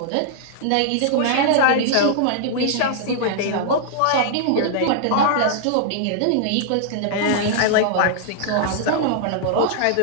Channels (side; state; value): both; different; correlation -0.01